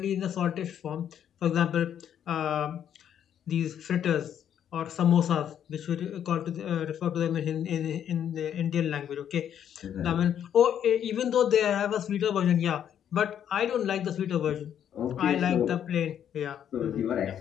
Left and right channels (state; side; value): quieter; right; 9.5 dB